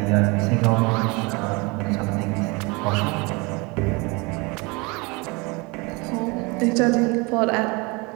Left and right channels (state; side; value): quieter; left; 27.1 dB